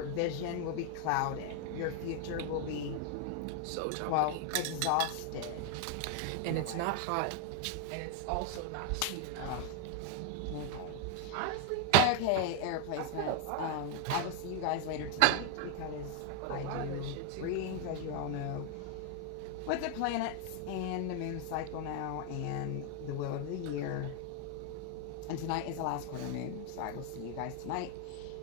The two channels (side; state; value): both; different; correlation 0.01